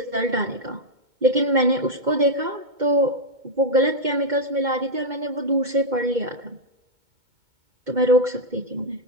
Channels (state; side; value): late; left; 2.2 ms